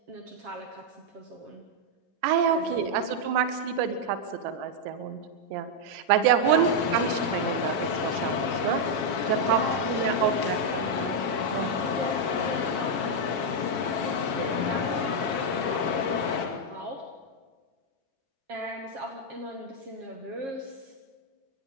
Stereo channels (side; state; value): left; late; 7.3 ms